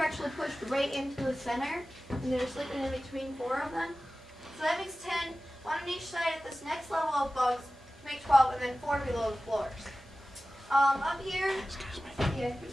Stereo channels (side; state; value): both; normal; correlation 0.96